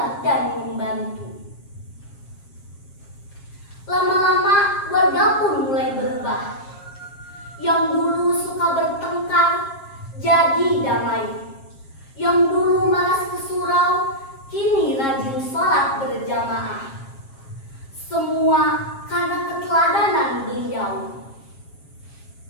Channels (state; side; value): late; right; 7.4 ms